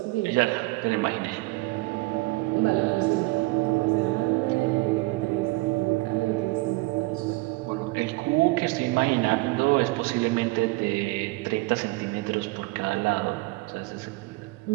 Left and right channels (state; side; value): quieter; left; 23.2 dB